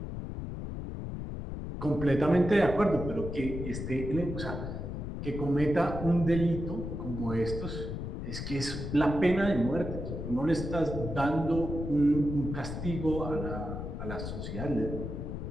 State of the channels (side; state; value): left; noise; rumble, 6 dB below the sound